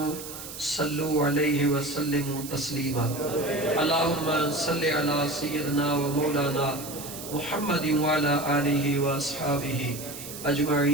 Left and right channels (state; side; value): noise; right; hiss, 11 dB below the sound